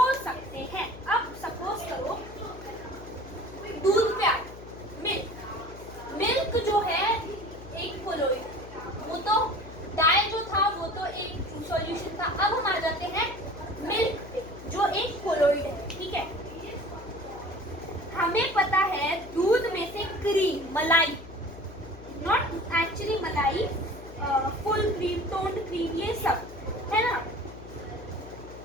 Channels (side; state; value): left; noise; hum, 15 dB below the sound